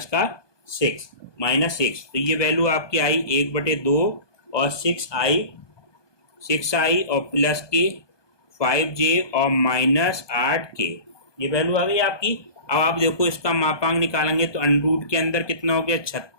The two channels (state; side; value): late; right; 1.2 ms